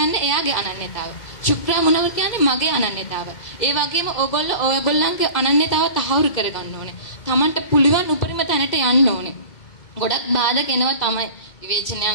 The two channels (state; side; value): late; right; 2.0 ms